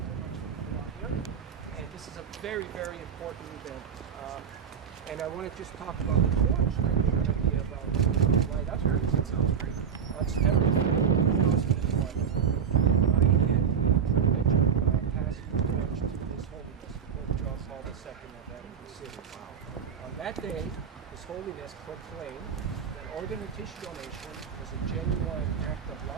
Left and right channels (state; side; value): quieter; left; 7.4 dB